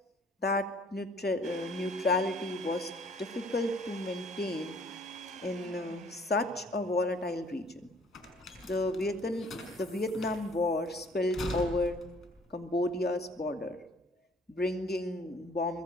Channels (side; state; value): both; normal; correlation 0.57